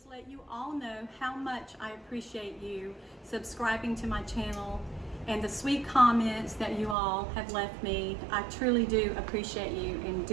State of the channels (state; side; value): drops out; left; at 7.0 s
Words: let you all know how much I appreciate you subscribing to my channel and the sweet comments that you all have left me. I truly do appreciate you and